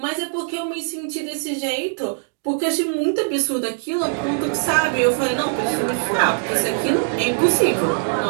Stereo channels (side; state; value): left; silent; 61 dB below the other